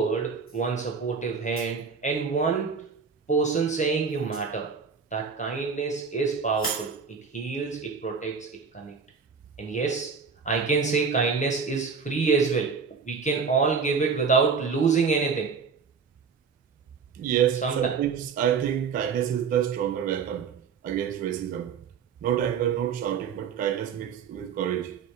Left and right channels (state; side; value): quieter; left; 5.8 dB